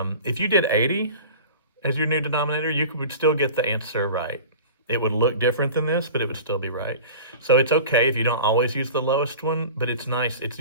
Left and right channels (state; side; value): inverted; both; correlation -0.37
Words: if you did 80 as your new denominator, you would still get the answer right. It would look different than this, but it would still be right. So it's okay if you don't always use the lowest one, but it's nice. It's